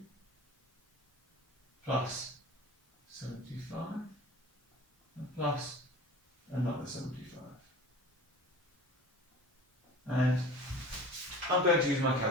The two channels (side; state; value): both; normal; correlation 0.39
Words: plus 75, and plus another 75. And I'm going to use my